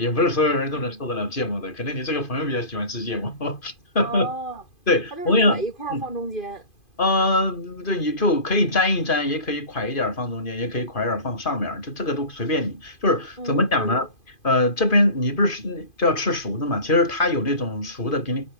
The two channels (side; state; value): right; late; 2.5 ms